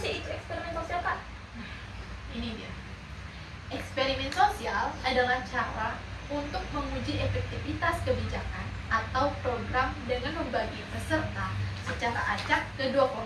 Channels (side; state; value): both; identical; correlation 1.00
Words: itu eksperimen sosial, Kak? Ini dia. Eksperimen sosial adalah cara untuk menguji efektivitas kebijakan atau program dengan membagi peserta secara acak ke dua